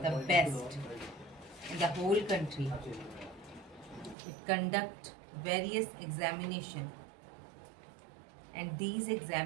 the best in the whole country. It conducts various examinations, and these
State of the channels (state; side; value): drops out; left; at 4.2 s